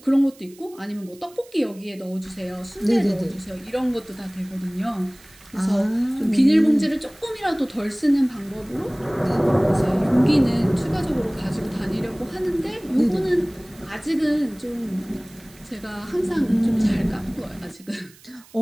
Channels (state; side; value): noise; right; hiss, 25 dB below the sound